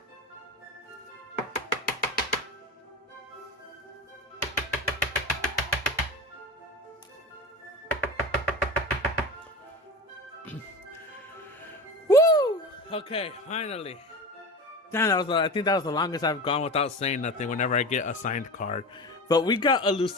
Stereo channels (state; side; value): normal; both; correlation 0.28